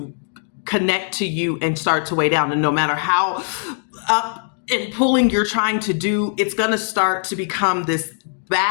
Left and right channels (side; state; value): right; silent; digital silence